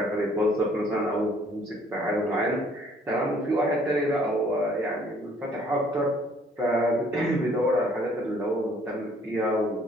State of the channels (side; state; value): both; normal; correlation 0.60